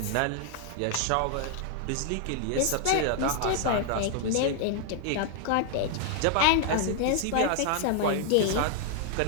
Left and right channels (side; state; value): both; different; correlation 0.00